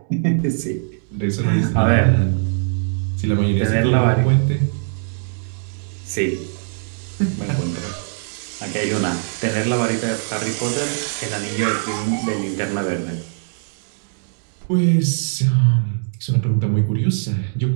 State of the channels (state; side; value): silent; left; digital silence